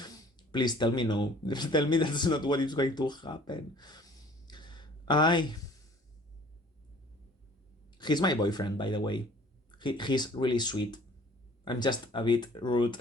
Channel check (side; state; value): both; normal; correlation 0.52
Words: Please tell me no. Tell me that's not what is going to happen. He's my boyfriend, by the way. He's really sweet. I'm just a bit rude